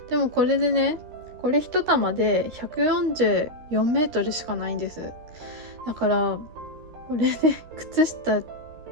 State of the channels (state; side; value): late; left; 13 ms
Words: でもこれでね、これ一玉で144メートルしかないんです。だからこれで靴下